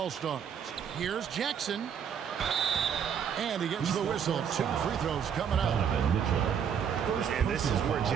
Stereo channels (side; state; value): left; quieter; 7.9 dB